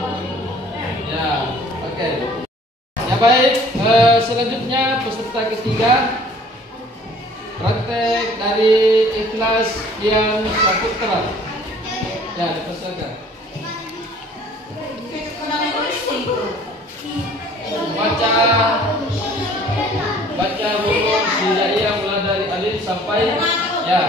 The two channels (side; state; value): both; normal; correlation 0.53